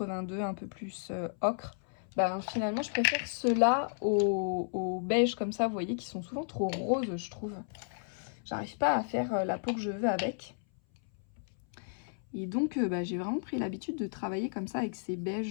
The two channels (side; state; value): right; silent; 56 dB below the other